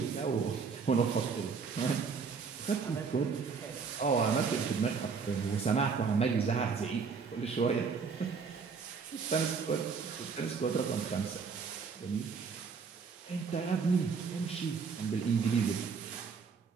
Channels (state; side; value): quieter; left; 5.5 dB